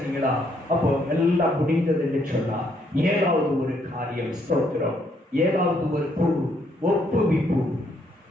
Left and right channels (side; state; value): both; normal; correlation 0.71